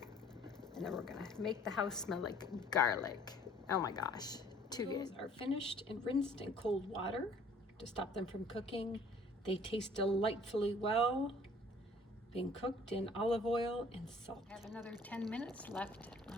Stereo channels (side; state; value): both; normal; correlation 0.55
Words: And then we're gonna make the house smell like garlic. Oh my gosh, too good. Those are finished and rinsed in cold water to stop them from cooking. They taste delightfully well, being cooked in olive oil and salt. I have another 10 minutes left